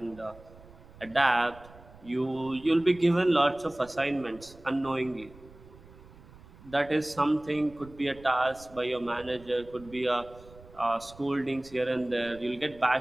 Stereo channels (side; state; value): right; noise; rumble, 21 dB below the sound